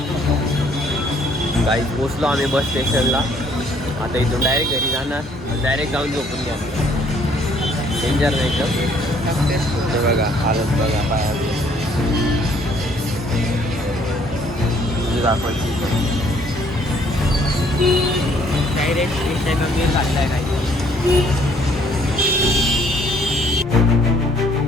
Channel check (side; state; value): both; normal; correlation 0.62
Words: काही पोचलो आम्ही बस स्टेशनला. आता इथून डायरेक्ट घरी जाणार, डायरेक्ट जाऊन झोपून घ्या. डेंजर नाही का ते बघा, हालत बघा पायाची. दाखवायची डायरेक्ट घातलाय नाही.